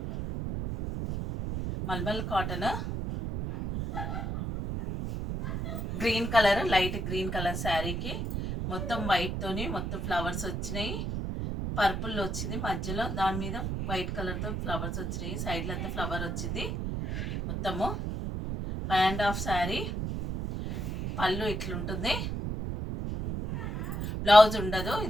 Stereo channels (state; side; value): noise; right; rumble, 3 dB below the sound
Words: malmal cotton green colour, light green colour శారీకి మొత్తం వైట్తోని మొత్తం ఫ్లవర్స్ వచ్చినాయి. పర్పుల్ వచ్చింది మధ్యలో, దాని మీద వైట్ కలర్తో ఫ్లవర్స్ వచ్చినాయి. సైడ్లో అంతా ఫ్లవర్ వచ్చింది. మొత్తము 5.5 శారీ. పళ్ళు ఇట్లుంటుంది, బ్లౌజ్ ఉండదు